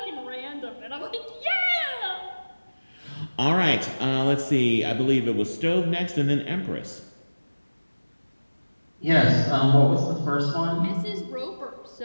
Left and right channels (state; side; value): inverted; both; correlation -1.00